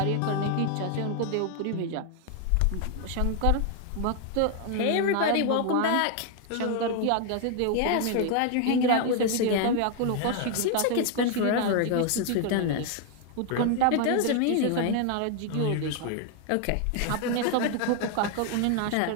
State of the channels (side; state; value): both; different; correlation 0.00